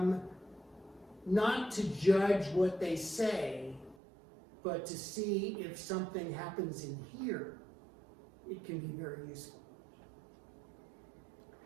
not to judge what they say, but to see if something happens in here, it can be very useful.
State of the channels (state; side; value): drops out; left; at 4.0 s